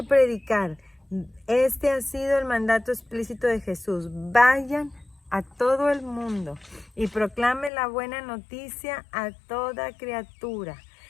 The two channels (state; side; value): drops out; right; at 7.7 s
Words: predicar. Este ha sido el mandato explícito de Jesús. Vayan a todo el mundo y proclamen la buena noticia a toda criatura.